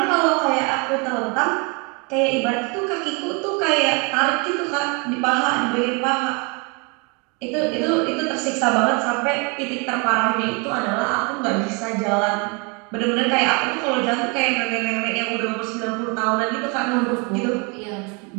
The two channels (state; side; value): quieter; left; 31.7 dB